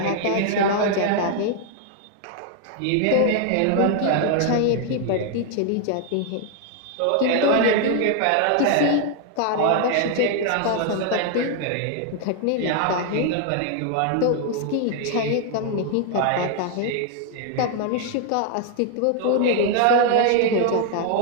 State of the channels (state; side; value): different; both; correlation 0.00